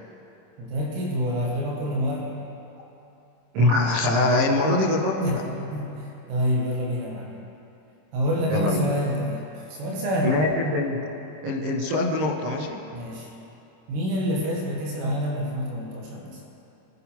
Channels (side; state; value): left; late; 26 ms